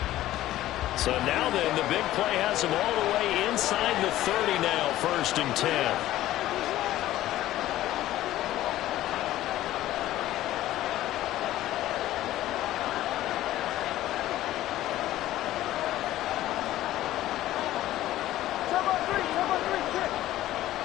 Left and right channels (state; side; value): quieter; right; 14.5 dB